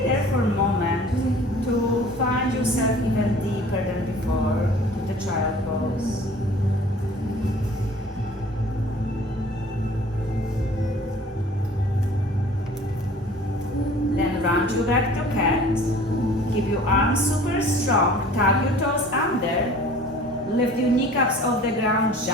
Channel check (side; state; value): both; normal; correlation 0.47